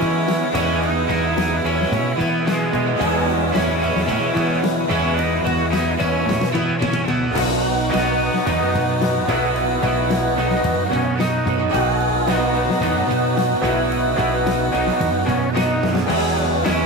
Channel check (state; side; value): normal; both; correlation 0.38